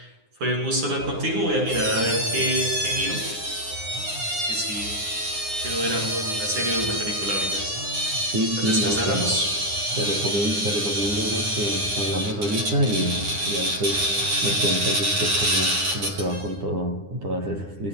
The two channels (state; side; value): late; left; 9.8 ms